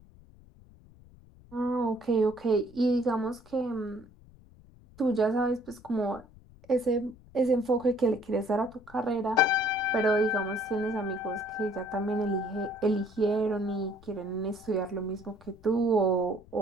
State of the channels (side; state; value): left; noise; rumble, 24 dB below the sound